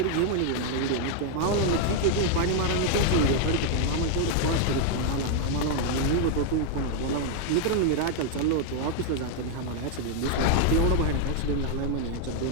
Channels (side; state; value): both; different; correlation 0.00